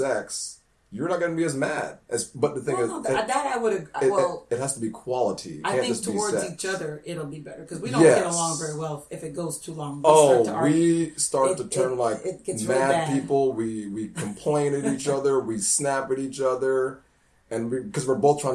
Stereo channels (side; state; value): both; identical; correlation 1.00